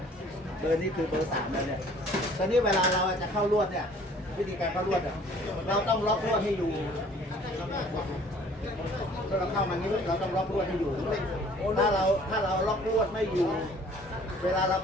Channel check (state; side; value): normal; both; correlation 0.54